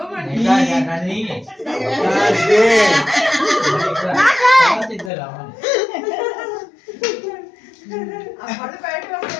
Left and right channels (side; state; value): right; drops out; at 5.1 s